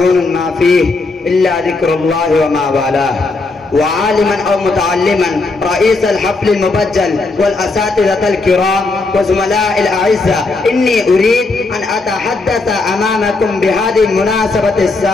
ما فيه إلا ذكر الله وما والاه. وعالما أو متعلما، رئيس الحفل المبجل والأساتذة الكرام وزملاء الأعزاء، إني أريد أن أتحدث أمامكم بهذه المناسبة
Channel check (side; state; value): right; quieter; 3.5 dB